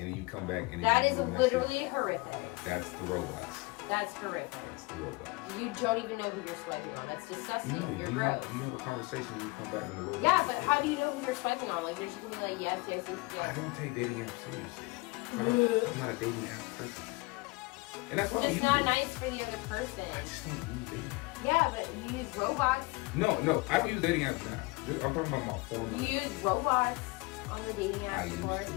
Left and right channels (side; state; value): right; quieter; 25.3 dB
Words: you come back, and that is literally horrific. That's the robots. That's horrific. That's the robots. You don't even know who you're swiping on. That's disgusting. No, you're you gross. have a conversation when you come back in the robot. Yeah, but how do you know who you're swiping on? They're just gonna be like, yes. I don't take dating apps seriously. I'm not a dating app person. And that's why it's not nice for the other person. I just don't use dating apps. Yeah, but you use robots. No, I don't use dating apps now. I'm talking about my phone. You use robots on the dating I apps used before? to.